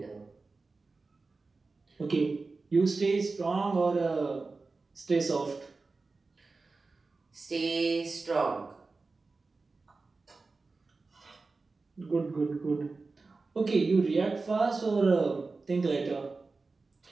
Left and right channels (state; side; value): quieter; left; 3.9 dB